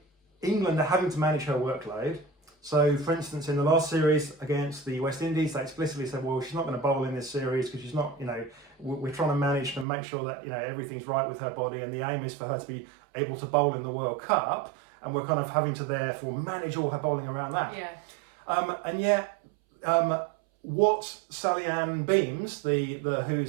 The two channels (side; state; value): left; drops out; at 9.9 s